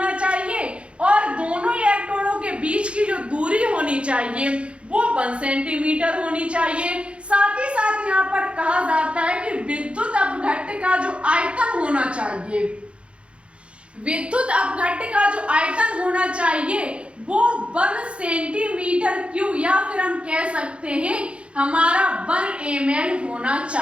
चाहिए और दोनों इलेक्ट्रोडों के बीच की जो दूरी होनी चाहिए वो 1 सेंटीमीटर होनी चाहिए। साथ ही साथ यहाँ पर कहा जाता है कि विद्युत अपघट्ट का जो आयतन होना चाहिए, विद्युत अपघट्ट का जो आयतन होना चाहिए वो 1 सेंटीमीटर क्यूब या फिर हम कह सकते हैं हमारा 1 ml होना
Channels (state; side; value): late; left; 0.059 ms